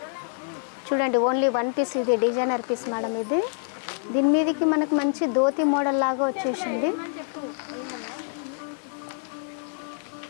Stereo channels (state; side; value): silent; right; digital silence